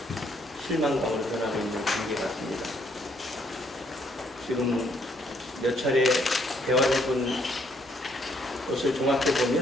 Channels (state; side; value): normal; both; correlation 0.69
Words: 실망감으로 변하고 있는 관계 같습니다. 지금 몇 차례 대화를 해본 것을 종합해